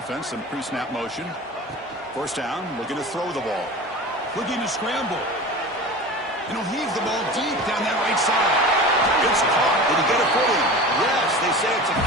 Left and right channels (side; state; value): both; normal; correlation 0.34